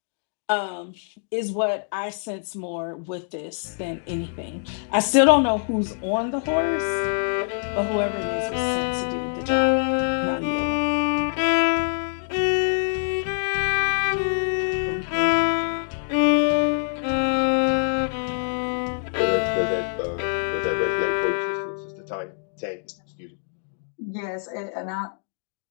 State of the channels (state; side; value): silent; right; digital silence